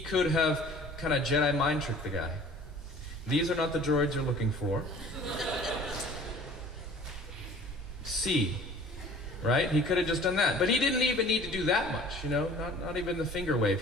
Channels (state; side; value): normal; both; correlation 0.47